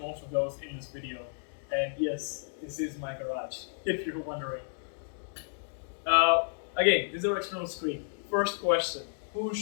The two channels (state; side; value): silent; right; digital silence